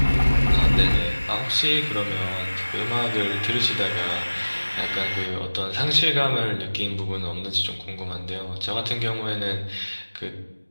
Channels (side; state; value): both; inverted; correlation -1.00